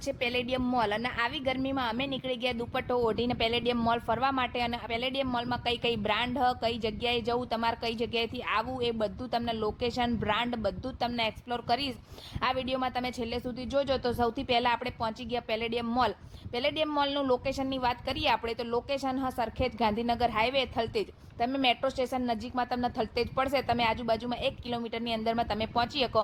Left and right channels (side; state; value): both; identical; correlation 1.00